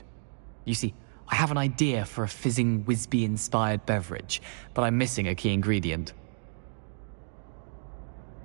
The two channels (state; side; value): silent; left; digital silence